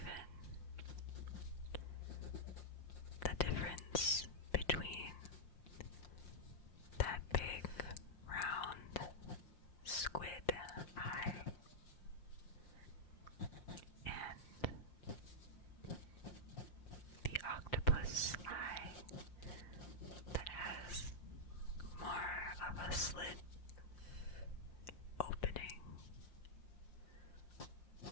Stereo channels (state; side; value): late; right; 5.7 ms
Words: the difference between that big round squid eye and the octopus eye that has more of a slit opening